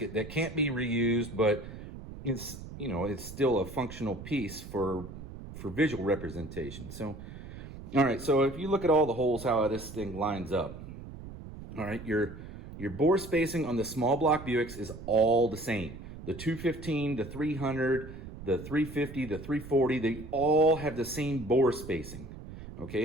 that can't be reused, but it's, you know, it's still a functional piece for visual representation. So, all right. So if you look at all the holes, how this thing lines up. All right, your bore spacing on the small block Buicks is all the same. The 215, the 300, the 350, the 340, they all have the same bore spacing,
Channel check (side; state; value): right; noise; rumble, 12 dB below the sound